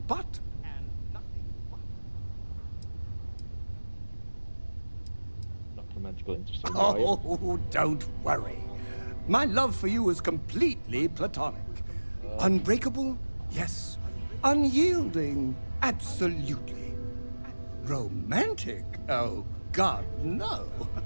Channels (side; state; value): both; inverted; correlation -1.00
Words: but. Not romantically interested, are you? Oh, don't worry. My love for you is completely platonic. Unbreakable? Yes. Unyielding? Absolutely. Romantic? Oh, God, no.